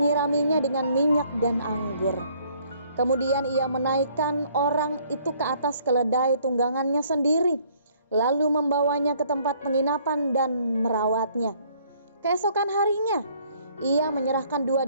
dengan minyak dan anggur. Kemudian ia menaikkan orang itu ke atas keledai tunggangannya sendiri, lalu membawanya ke tempat penginapan dan merawatnya. Keesokan harinya, ia menyerahkan 2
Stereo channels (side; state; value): both; inverted; correlation -0.62